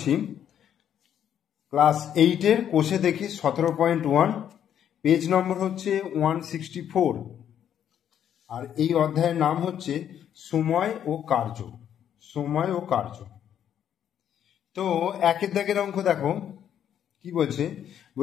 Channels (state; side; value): quieter; right; 9.6 dB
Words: ক্লাস 8-এর কোষে দেখি 17.1, পেজ নম্বর হচ্ছে 164, আর এই অধ্যায়ের নাম হচ্ছে সময় ও কার্য। সময় ও কার্য। তো একের দাগের অঙ্ক দেখো কি বলছে।